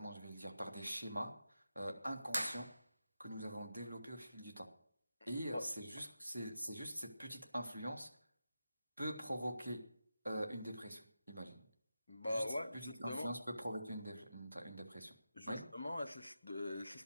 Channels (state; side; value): inverted; both; correlation -0.89